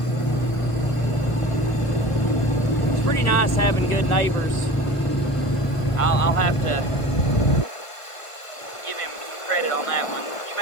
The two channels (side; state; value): right; late; 1.5 ms